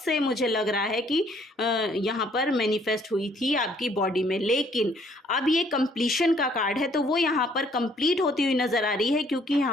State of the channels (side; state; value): both; normal; correlation 0.63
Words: मुझे लग रहा है कि यहाँ पर मैनिफेस्ट हुई थी आपकी बॉडी में। लेकिन अब ये कंप्लीशन का कार्ड है, तो वो यहाँ पर कंप्लीट होती हुई नज़र आ रही है, क्योंकि